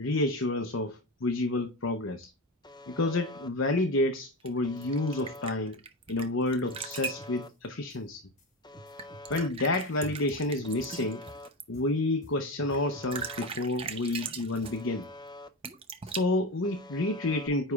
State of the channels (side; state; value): both; normal; correlation 0.21